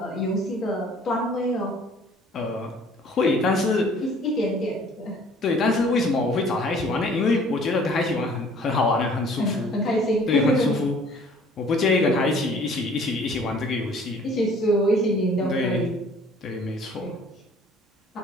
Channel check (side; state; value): both; normal; correlation 0.54